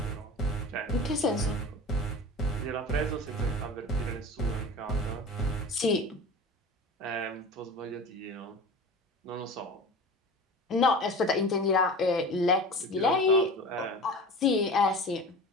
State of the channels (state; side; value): normal; both; correlation 0.35